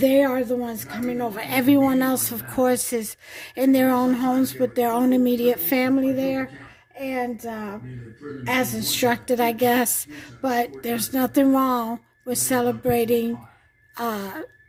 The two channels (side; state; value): both; identical; correlation 1.00